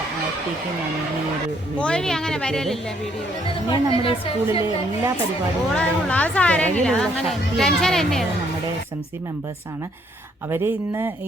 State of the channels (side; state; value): both; normal; correlation 0.68